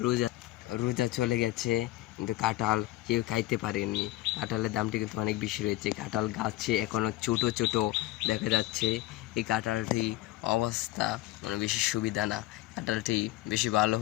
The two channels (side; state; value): right; quieter; 17.1 dB